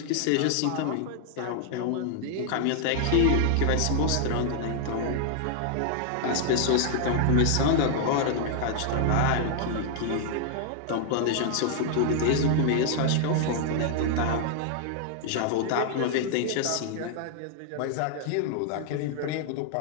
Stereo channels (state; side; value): different; both; correlation 0.00